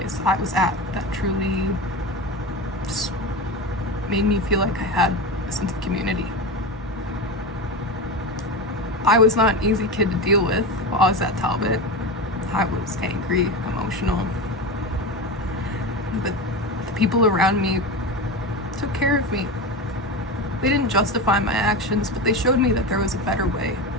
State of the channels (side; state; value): both; normal; correlation 0.22